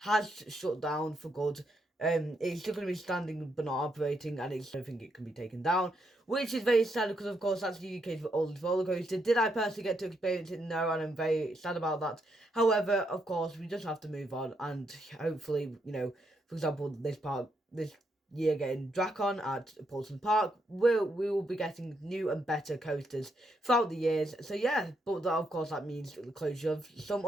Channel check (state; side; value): normal; both; correlation 0.78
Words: shut down for good. It's still going to be standing but not operating, and I don't think it can be taken down, which is very sad because, of course, that's the UK's oldest roller coaster. Did I personally get to experience it? No, and I'm very sad about that. However, of course, we just have to move on, and hopefully, for example, this year getting Dracon at Paulson Park, we will be getting new and better coasters throughout the years. So yeah, but that, of course, that means the closure of some